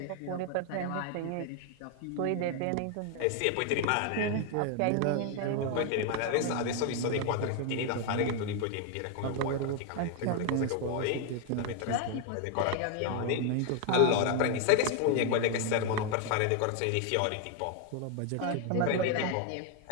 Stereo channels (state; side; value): different; both; correlation 0.01